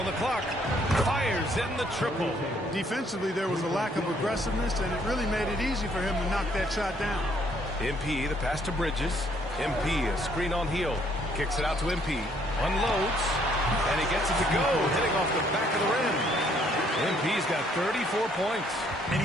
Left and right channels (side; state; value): both; normal; correlation 0.66